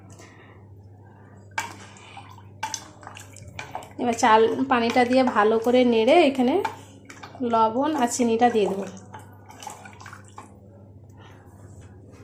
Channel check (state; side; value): identical; both; correlation 1.00